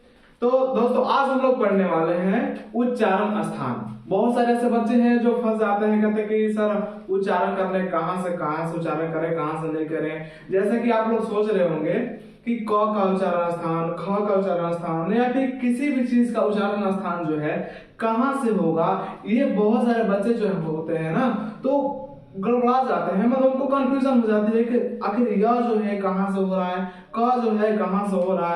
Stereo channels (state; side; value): identical; both; correlation 1.00